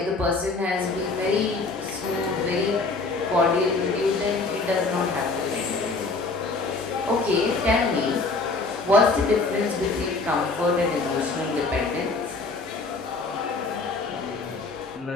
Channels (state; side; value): quieter; right; 3.8 dB